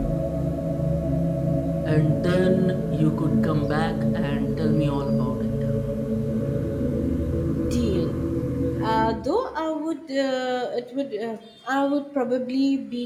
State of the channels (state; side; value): identical; both; correlation 1.00